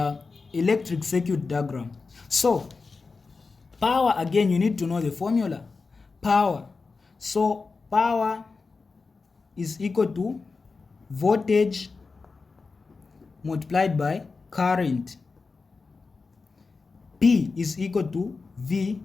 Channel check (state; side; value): quieter; right; 4.3 dB